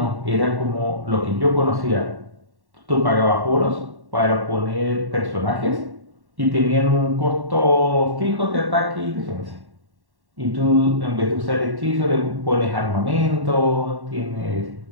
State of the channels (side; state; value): left; late; 1.1 ms